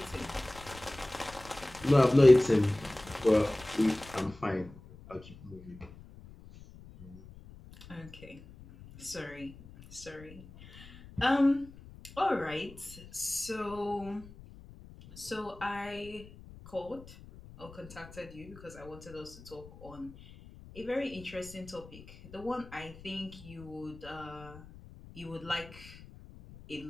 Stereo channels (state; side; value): noise; left; rumble, 18 dB below the sound